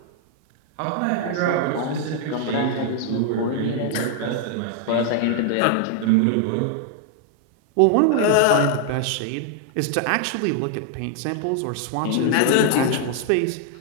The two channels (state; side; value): different; both; correlation 0.00